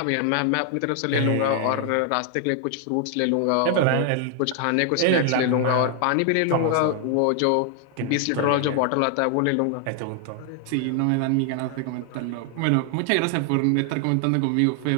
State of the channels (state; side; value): different; both; correlation 0.00